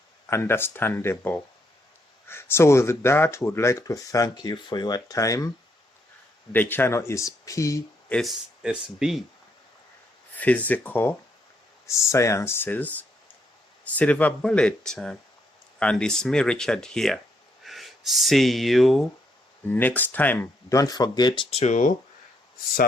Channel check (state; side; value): normal; both; correlation 0.75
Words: understandable. So with that, we would like to thank you for your time. The channel is PSSB, Physical Sciences Silver Bullet, and it's me, Richard, here. See you next time. Don't forget to